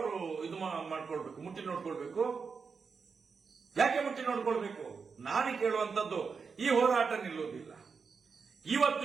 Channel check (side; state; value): left; quieter; 5.4 dB